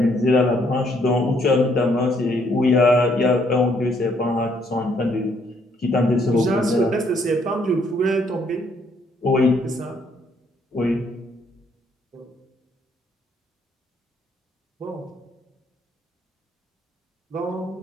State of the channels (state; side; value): normal; both; correlation 0.69